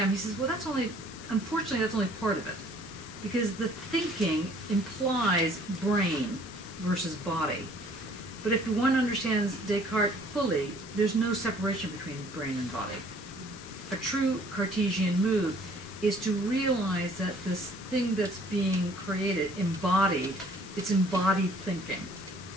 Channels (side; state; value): left; noise; hiss, 17 dB below the sound